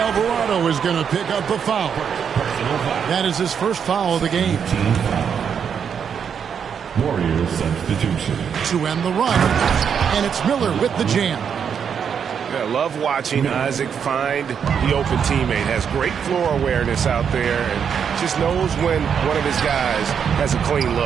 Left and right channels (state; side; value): quieter; left; 7.4 dB